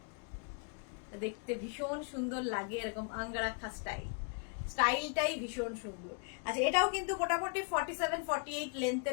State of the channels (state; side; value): quieter; right; 37.8 dB